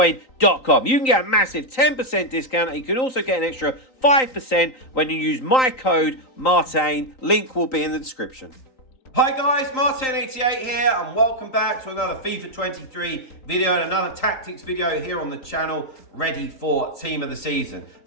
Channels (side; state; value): right; late; 3.9 ms